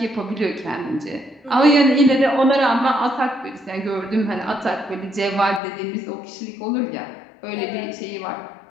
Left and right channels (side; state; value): right; drops out; at 5.6 s